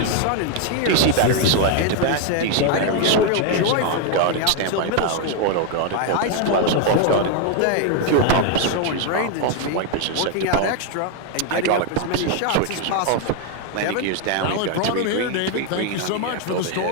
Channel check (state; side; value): different; both; correlation 0.00